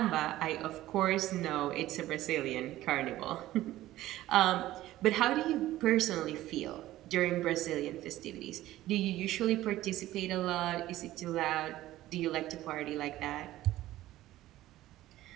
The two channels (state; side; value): quieter; left; 15.2 dB